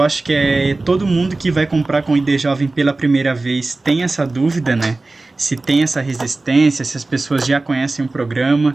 acho que todo mundo que vai comprar com ID Jovem pela primeira vez tem essa dúvida, né? Se tem essa resistência, se as pessoas já conhecem o programa,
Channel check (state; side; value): quieter; left; 3.2 dB